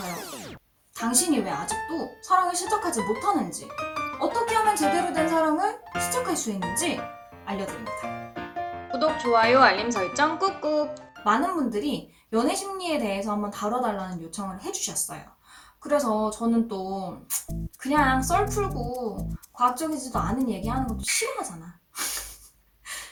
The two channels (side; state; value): both; identical; correlation 1.00